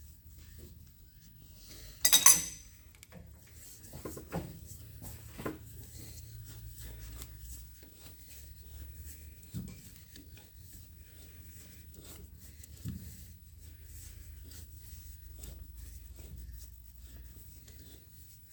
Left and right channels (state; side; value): identical; both; correlation 1.00